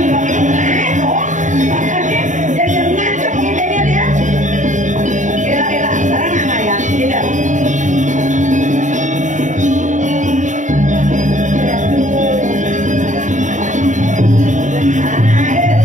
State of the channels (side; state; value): left; late; 0.36 ms